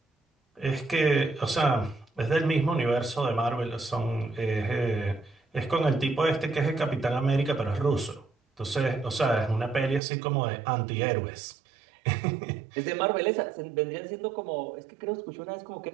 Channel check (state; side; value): drops out; left; at 10.0 s